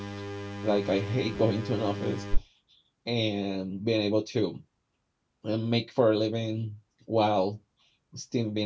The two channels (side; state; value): both; identical; correlation 1.00